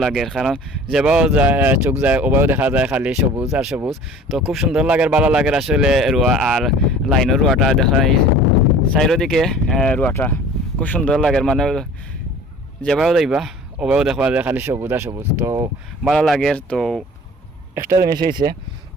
লাগে, কারণ যেভাবে যায় চোখ যায় ওভাবেও দেখা যায় খালি সবুজ আর সবুজ। তো খুব সুন্দর লাগে, ভালো লাগে আসলে রোয়া। আর লাইনের রোয়াটা দেখা চারিদিকে রোয়াটা খুব সুন্দর লাগে, মানে যেভাবে যাইবা ওভাবেও দেখা যায় খালি সবুজ আর সবুজ, তো ভালো লাগে। তো একটা জিনিস হয়েছে,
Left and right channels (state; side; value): normal; both; correlation 0.45